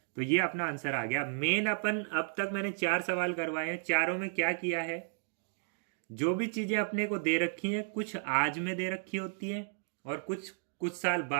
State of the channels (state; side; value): silent; left; digital silence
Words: तो ये अपना आंसर आ गया। मेन अपन अब तक मैंने 4 सवाल करवाए हैं, चारों में क्या किया है? जो भी चीजें अपने को दे रखी हैं, कुछ आज में दे रखी होती हैं और कुछ साल